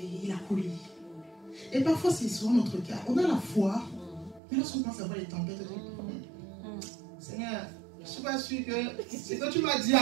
il a coulé. Et parfois, c'est souvent notre cas. On a la foi, mais lorsqu'on pense à voir les tempêtes, on dit, Seigneur, je ne suis pas sûr que ce que tu m'as dit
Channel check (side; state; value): left; drops out; at 4.4 s